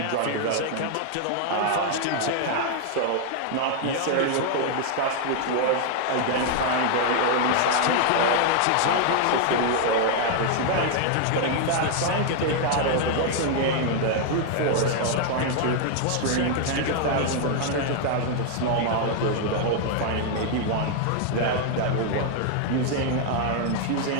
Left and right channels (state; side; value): different; both; correlation 0.00